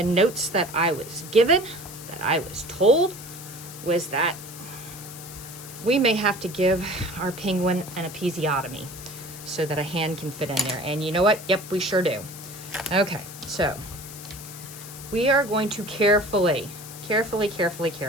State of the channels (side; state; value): left; noise; hiss, 14 dB below the sound